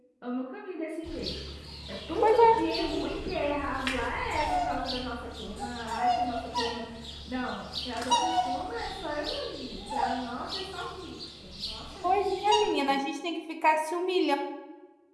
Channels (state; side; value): identical; both; correlation 1.00